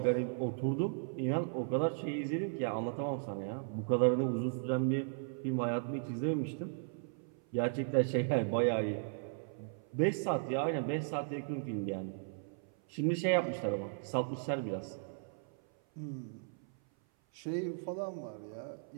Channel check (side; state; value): left; silent; 54 dB below the other